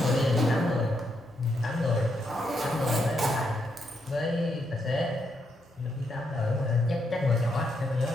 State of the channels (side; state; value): both; normal; correlation 0.79